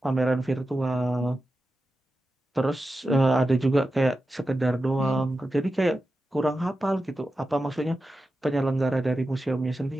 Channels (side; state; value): both; normal; correlation 0.91